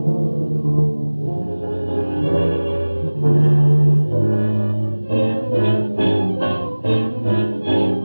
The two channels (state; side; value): inverted; both; correlation -1.00